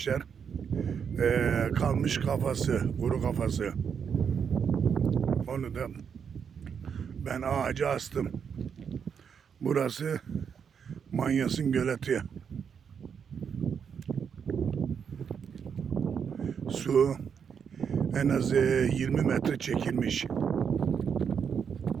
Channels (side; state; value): left; quieter; 7.1 dB